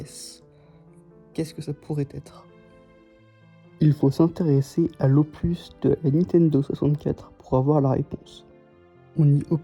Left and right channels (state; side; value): identical; both; correlation 1.00